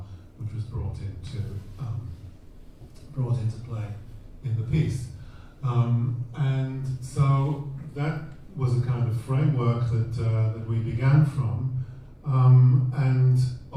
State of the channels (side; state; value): both; identical; correlation 1.00